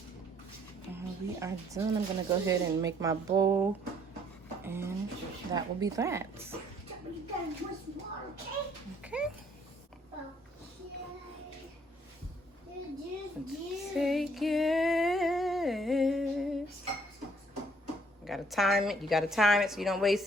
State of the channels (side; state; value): both; normal; correlation 0.63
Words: there. We are done. I'm gonna go ahead and make my bowl, and that will be that. You gotta drink some water, okay? Okay. Okay. Take it. You gotta time it. You gotta time it so you don't